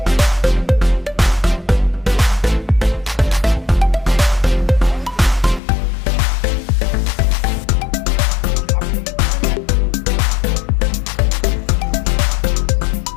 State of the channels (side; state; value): right; drops out; at 5.6 s